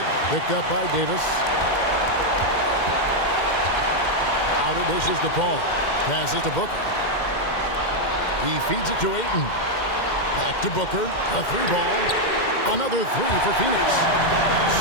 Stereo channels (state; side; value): late; right; 2.1 ms